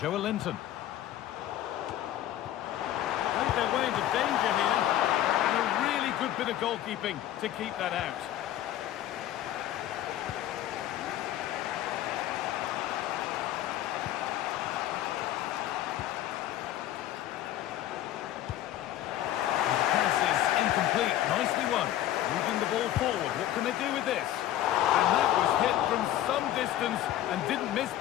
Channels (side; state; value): right; quieter; 12.9 dB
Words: Played their way into danger here. And a really good bit of goalkeeping to keep that out. Nicely won. Moving the ball forward. What can they do with this? And that was hit from some distance and didn't miss